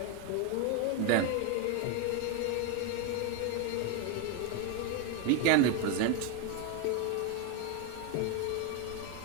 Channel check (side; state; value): both; different; correlation 0.01